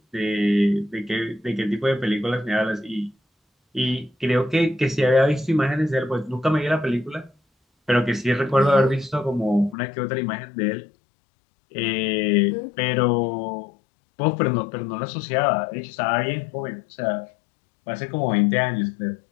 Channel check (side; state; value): right; drops out; at 9.8 s